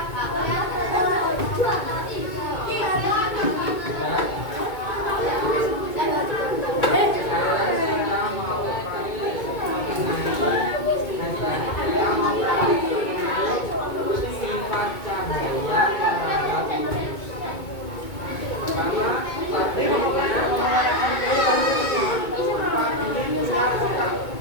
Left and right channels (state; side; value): late; right; 2.2 ms